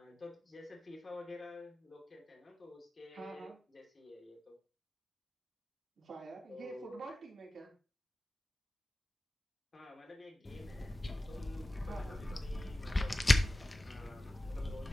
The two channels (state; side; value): normal; both; correlation 0.96